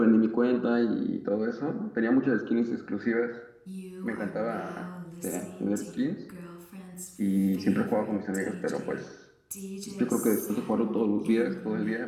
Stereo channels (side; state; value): both; identical; correlation 1.00